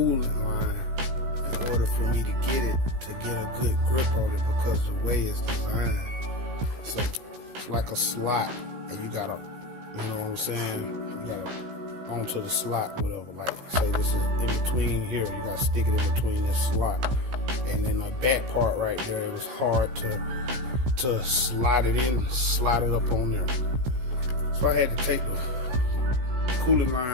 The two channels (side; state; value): left; late; 16 ms